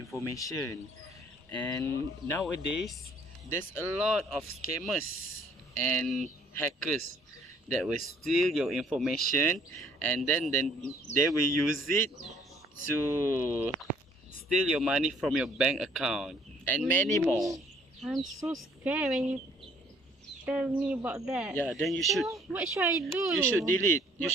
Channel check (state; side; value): normal; both; correlation 0.61